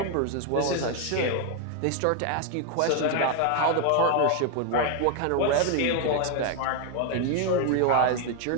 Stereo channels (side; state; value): both; different; correlation 0.01